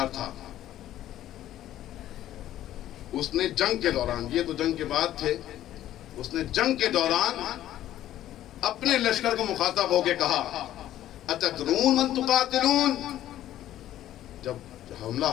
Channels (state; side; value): quieter; right; 12.9 dB